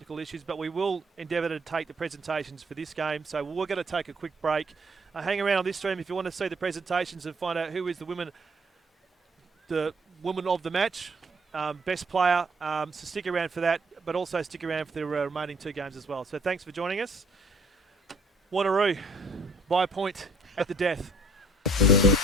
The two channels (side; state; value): both; normal; correlation 0.61